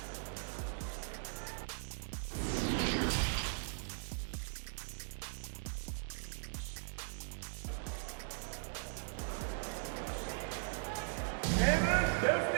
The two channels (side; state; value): left; silent; digital silence